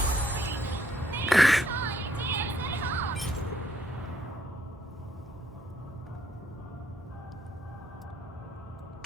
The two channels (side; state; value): both; normal; correlation 0.70